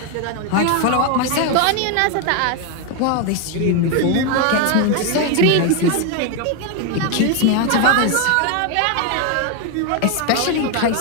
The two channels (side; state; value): both; different; correlation 0.01